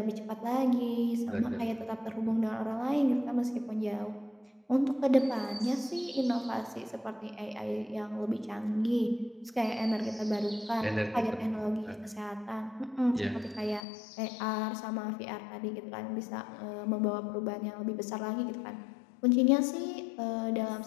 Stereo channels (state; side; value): drops out; right; at 13.9 s